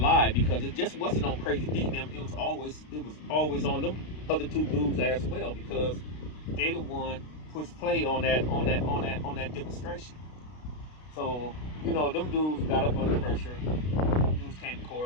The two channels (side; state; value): right; late; 33 ms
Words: because it just wasn't on Crazy D them. It was always on them other 2 dudes as well, because they the one pushed play on that demonstration. So, you know, them dudes got up under pressure. Dudes came to